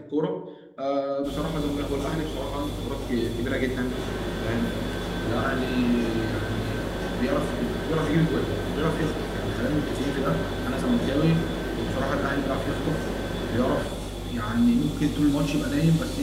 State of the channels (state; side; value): identical; both; correlation 1.00